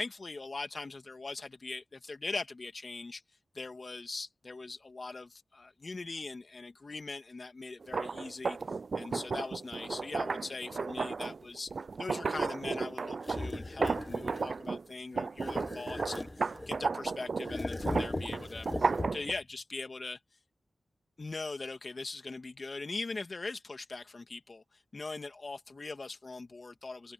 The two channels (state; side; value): normal; both; correlation 0.93